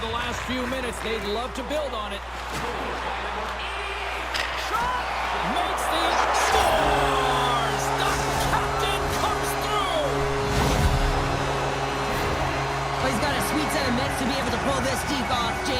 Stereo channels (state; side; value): identical; both; correlation 1.00